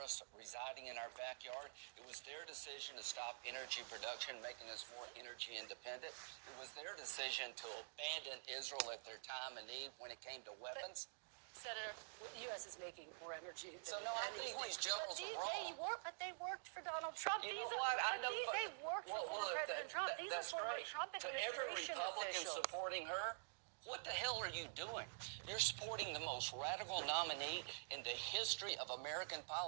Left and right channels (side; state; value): left; silent; digital silence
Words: residing in our backyard. It was their decision to stop energy production, making us more energy independent. It was their decision to abandon Israel at their time of need when it came to weapons. Senator, the U.S. is making more energy. So, no, I think these generals are wrong. But they worked for Donald Trump. You know what? I know. They worked for former President Trump. These are former Trump administration to every Republican officials. supporting her, what the hell are you doing? You're supporting the most radical nominee in the history of American